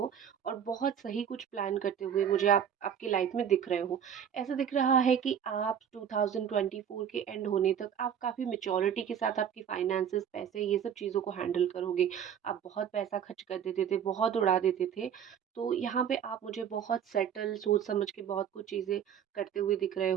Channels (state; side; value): quieter; left; 8.5 dB